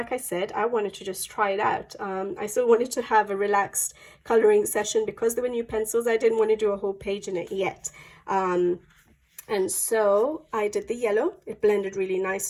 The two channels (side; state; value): both; identical; correlation 1.00